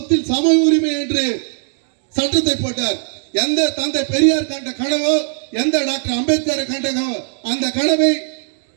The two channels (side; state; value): left; silent; digital silence